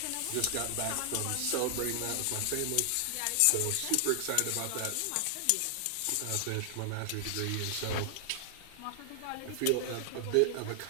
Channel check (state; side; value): different; both; correlation 0.00